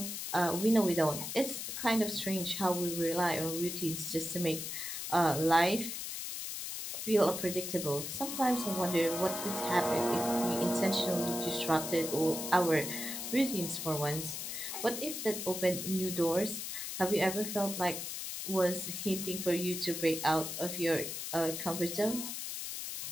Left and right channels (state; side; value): noise; left; hiss, 5 dB below the sound